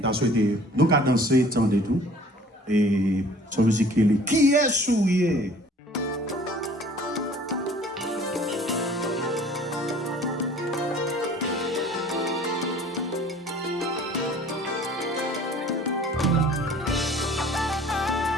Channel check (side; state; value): both; normal; correlation 0.51